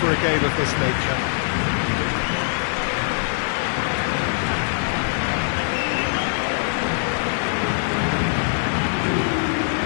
a game of this nature.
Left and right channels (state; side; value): silent; right; 64 dB below the other